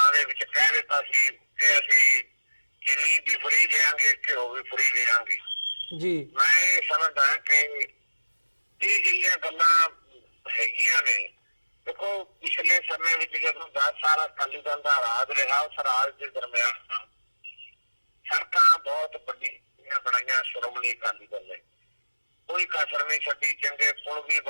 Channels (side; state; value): both; inverted; correlation -1.00